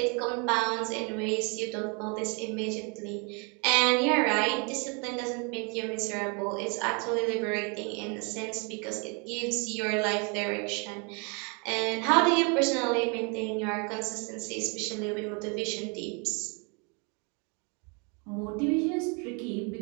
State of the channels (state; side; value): quieter; left; 33.6 dB